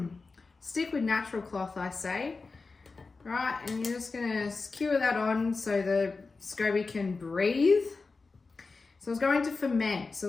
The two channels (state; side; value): quieter; right; 4.1 dB